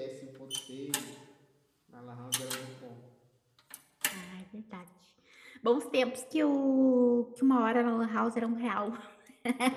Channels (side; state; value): both; identical; correlation 1.00